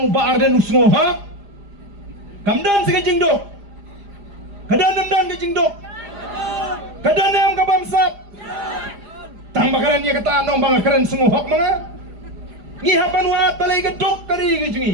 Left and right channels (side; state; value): left; late; 4.9 ms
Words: ba arden usngo ha kamdan ka jingduk kadan ka jingduk kadan am ka bamsap tang ba kren ya kata nong ba kren sungo hok mga ngi haban wat balai ka dok kari ka